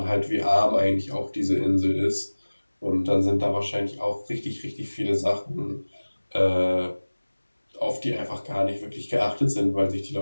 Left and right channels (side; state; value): both; inverted; correlation -1.00